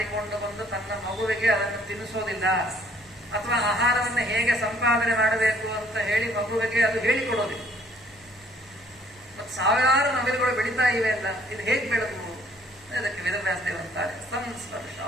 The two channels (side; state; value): both; normal; correlation 0.61